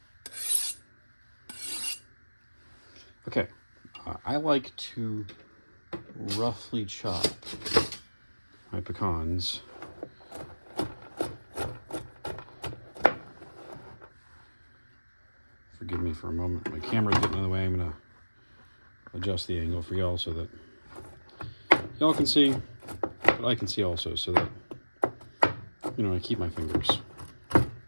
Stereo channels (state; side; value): inverted; both; correlation -1.00